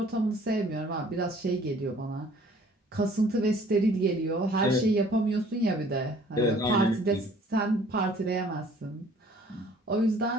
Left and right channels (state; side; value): normal; both; correlation 0.55